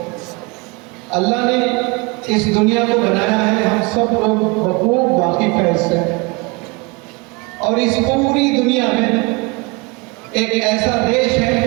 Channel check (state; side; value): quieter; left; 26.6 dB